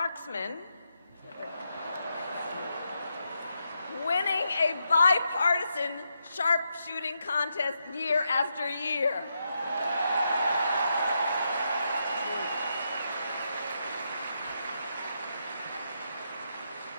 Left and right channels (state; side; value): inverted; both; correlation -0.82